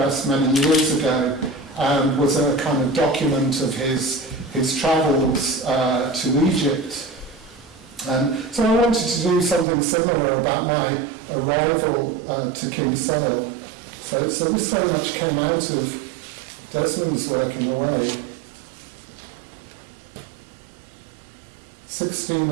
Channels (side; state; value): left; drops out; at 9.7 s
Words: many years ago, and was a kind of document of his travels to Egypt. So I wanted to do something similar about my arrival to Kinsale. So this very much came out of Desmond's work in a way.